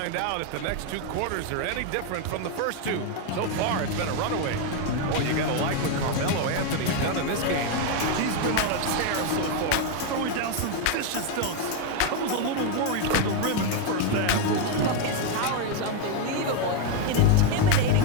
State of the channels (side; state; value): both; different; correlation 0.01